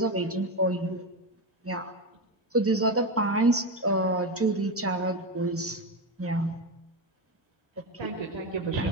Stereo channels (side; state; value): both; normal; correlation 0.14